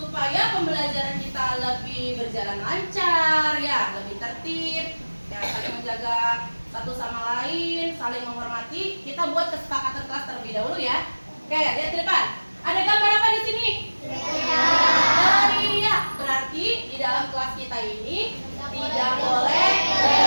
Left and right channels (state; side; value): inverted; both; correlation -1.00